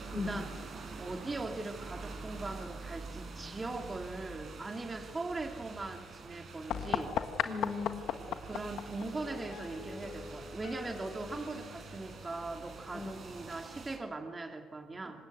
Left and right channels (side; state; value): both; normal; correlation 0.78